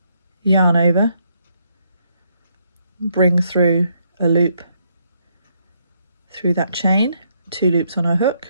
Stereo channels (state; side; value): inverted; both; correlation -0.74